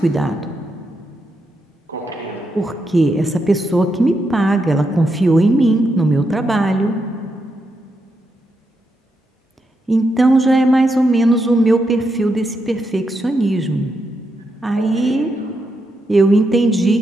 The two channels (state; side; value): normal; both; correlation 0.83